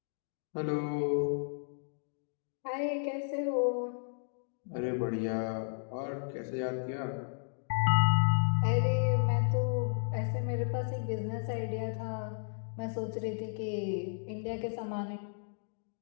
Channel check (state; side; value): silent; right; digital silence